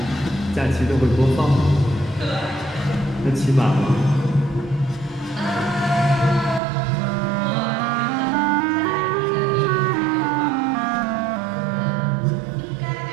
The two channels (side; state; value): left; drops out; at 6.6 s